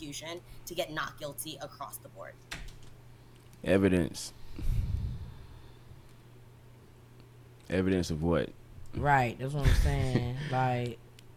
to get not guilty across the board. Evidence of what? Right, that's what I'm saying. Like,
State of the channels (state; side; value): identical; both; correlation 1.00